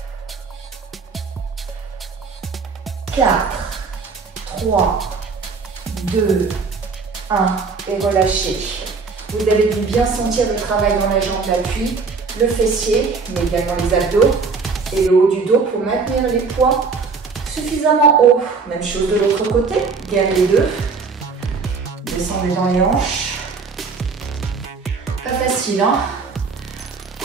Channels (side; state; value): left; quieter; 4.8 dB